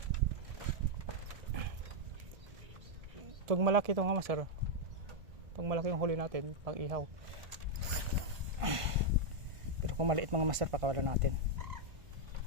Pag malaki ito nga master. Pag malaki yung huli natin, pang ihaw. Pero kung maliit mga master, pakawalan natin.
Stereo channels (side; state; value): left; late; 1.4 ms